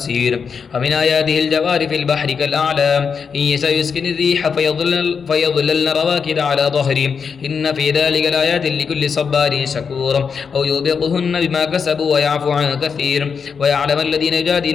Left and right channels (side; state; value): right; quieter; 6.1 dB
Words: ومن آياته الجوار في البحر كالأعلام إن يشأ يسكن الريح فيظللن رواكد على ظهره إن في ذلك لآيات لكل صبار شكور. أو يوبقهن بما كسبوا ويعفو عن كثير. ويعلم الذين